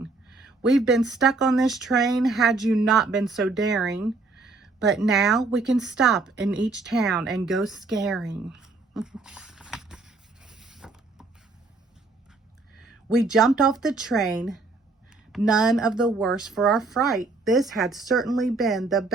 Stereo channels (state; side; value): quieter; left; 3.7 dB